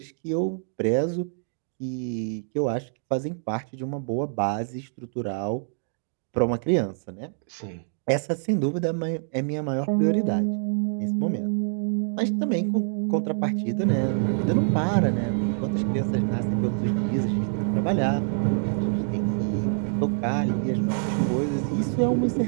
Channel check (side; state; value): left; silent; digital silence